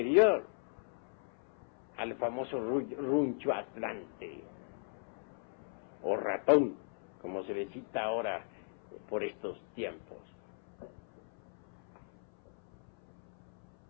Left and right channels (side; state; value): right; silent; 53 dB below the other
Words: al famoso runcho atlante, o ratón, como se le cita ahora por estos tiempos.